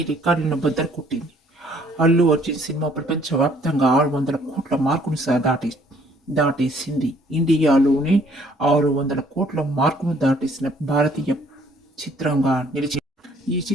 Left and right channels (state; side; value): normal; both; correlation 0.61